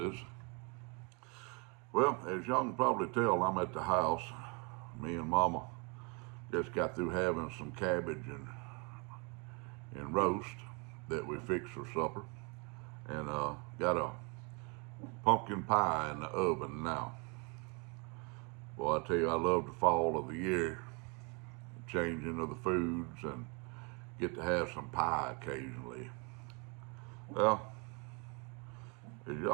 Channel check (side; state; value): left; quieter; 32.3 dB